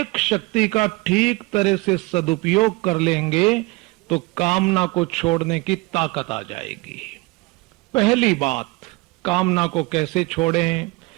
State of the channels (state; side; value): quieter; left; 23.8 dB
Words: शक्ति का ठीक तरह से सदुपयोग कर लेंगे तो कामना को छोड़ने की ताकत आ जाएगी। पहली बात, कामना को कैसे छोड़ें?